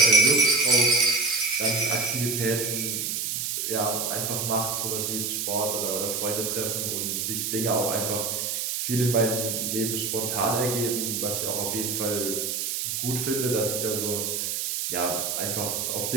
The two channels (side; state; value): right; noise; hiss, 1 dB below the sound